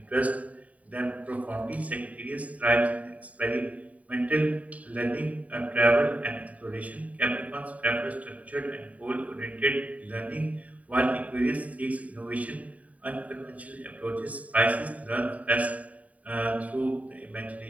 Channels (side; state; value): left; late; 0.069 ms